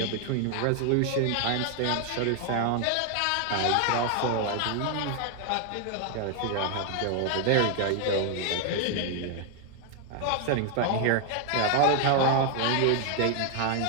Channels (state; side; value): different; both; correlation 0.01